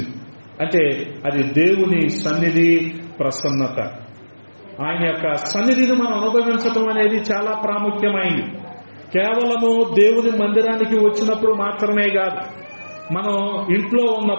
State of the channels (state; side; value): inverted; both; correlation -1.00